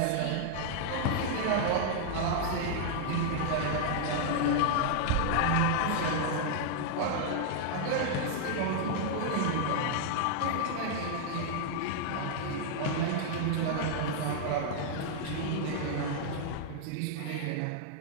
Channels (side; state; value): both; different; correlation -0.01